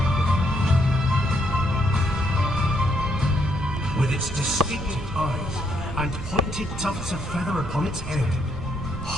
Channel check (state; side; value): noise; right; rumble, 9 dB below the sound